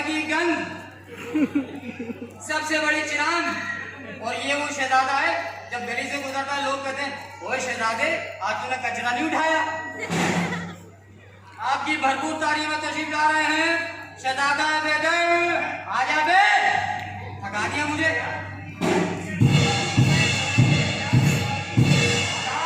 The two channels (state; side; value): identical; both; correlation 1.00